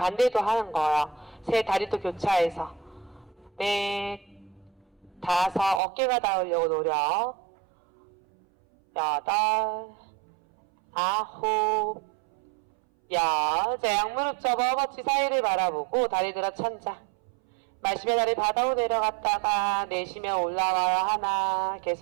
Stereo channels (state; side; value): drops out; left; at 5.8 s